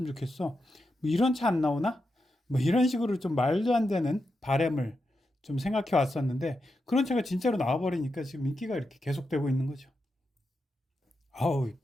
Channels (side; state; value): both; normal; correlation 0.87